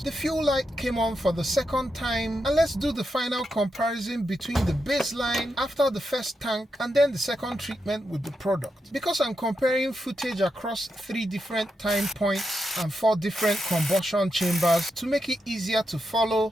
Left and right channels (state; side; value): normal; both; correlation 0.85